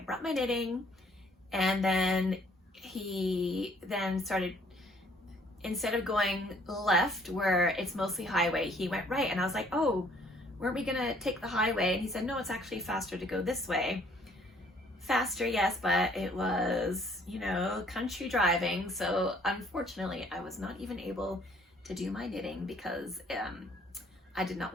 brought my knitting, and then he then started, instead of going left where it's mostly highway, he went right. And I was like, oh, weren't we gonna take the highway? And he said, no, it's actually faster to go this way. Faster, yes, but it was, you know, country driving. So unfortunately, I was not even able to do my knitting because I did not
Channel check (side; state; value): both; normal; correlation 0.61